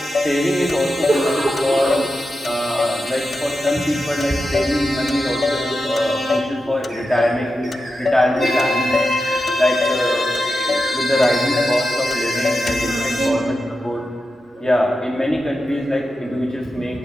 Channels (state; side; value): normal; both; correlation 0.90